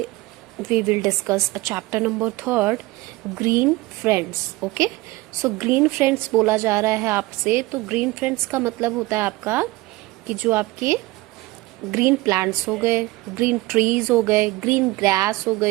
we will discuss a chapter number 3, green friends. Okay, so green friends बोला जा रहा है आपसे. तो green friends का मतलब होता है आपका कि जो आपके ग्रीन प्लांट्स हो गए, ग्रीन ट्रीज हो गए, ग्रीन ग्रास हो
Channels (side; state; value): left; quieter; 20.3 dB